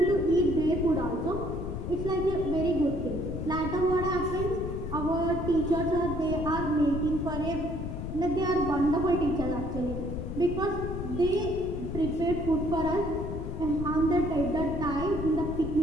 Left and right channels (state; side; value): noise; left; rumble, 5 dB below the sound